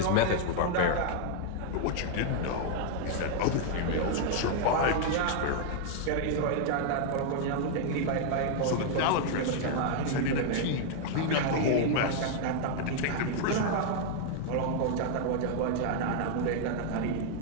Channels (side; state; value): both; different; correlation 0.00